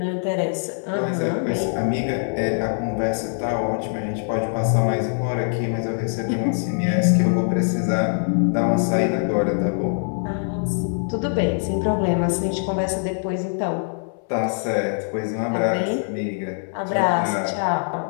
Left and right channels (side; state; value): right; silent; 63 dB below the other